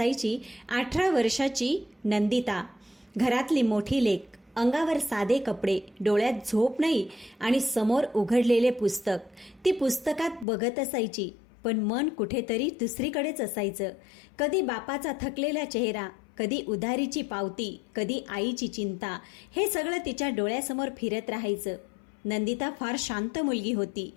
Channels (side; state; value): right; drops out; at 10.5 s